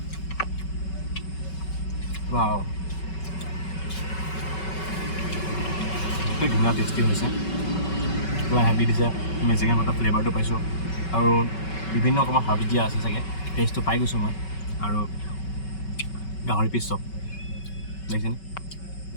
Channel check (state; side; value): late; right; 5.3 ms